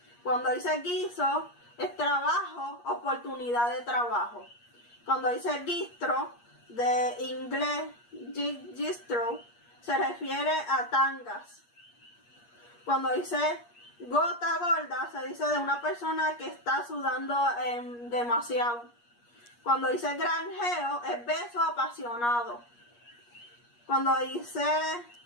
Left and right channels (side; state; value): right; late; 8.4 ms